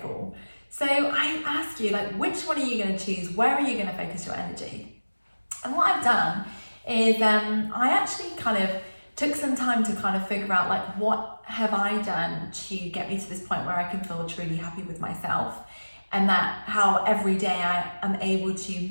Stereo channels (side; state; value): both; inverted; correlation -1.00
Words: So I ask you, like, which one are you going to choose? Where are you going to focus your energy? And what I've done is I actually kind of took some time to kind of figure out, like, what have I done to get me to this point where I can feel truly happy with myself, and that how every day I am able to